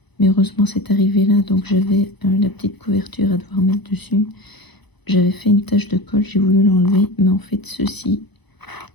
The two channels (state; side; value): late; right; 0.99 ms